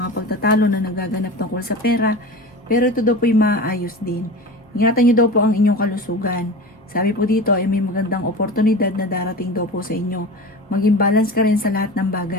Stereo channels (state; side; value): normal; both; correlation 0.31